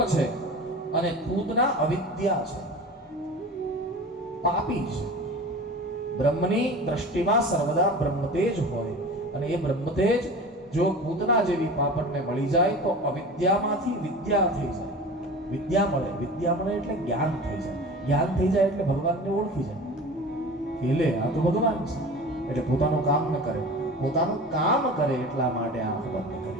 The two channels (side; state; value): both; normal; correlation 0.36